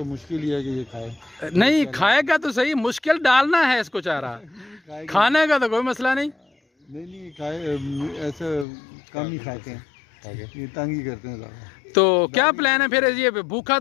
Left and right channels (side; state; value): right; drops out; at 8.7 s